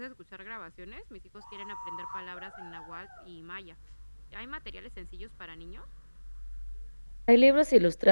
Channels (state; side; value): inverted; both; correlation -1.00